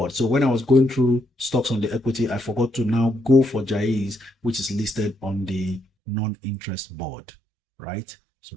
So when I was going through stocks on the equity, I forgot to now go for Jai's, which is listed on the non-interest board, right? So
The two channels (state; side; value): drops out; left; at 5.9 s